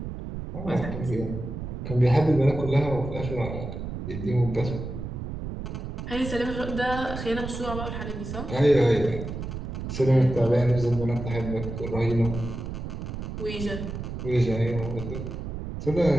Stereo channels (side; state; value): right; noise; rumble, 6 dB below the sound